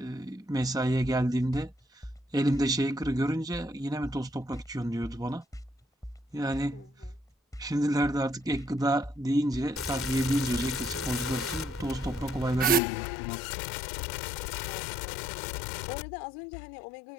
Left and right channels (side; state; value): right; drops out; at 12.8 s